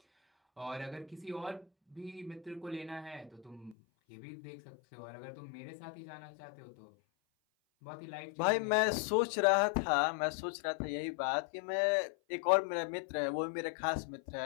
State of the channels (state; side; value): drops out; right; at 3.8 s